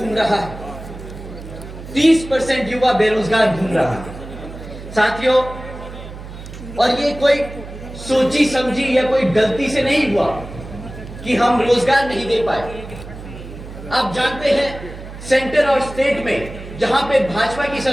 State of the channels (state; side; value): noise; right; hum, 13 dB below the sound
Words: रहा है। 30% युवा बेरोजगार घूम रहा है साथियों। और ये कोई सोची समझी या कोई गलती से नहीं हुआ कि हम रोजगार नहीं दे पाए। आप जानते हैं सेंटर और स्टेट में जहां पे भाजपा की